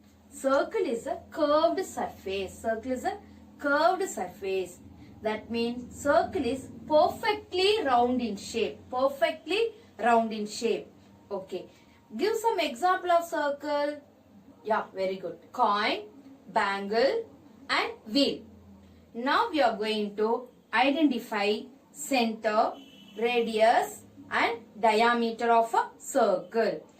Circle is a curved surface. Circle is a curved surface. That means circle is perfectly round in shape. Perfectly round in shape. Okay. Give some example of circle. Yeah, very good. Coin, bangle and wheel. Now we are going to identify center, radius and diameter of a circle.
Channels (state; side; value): identical; both; correlation 1.00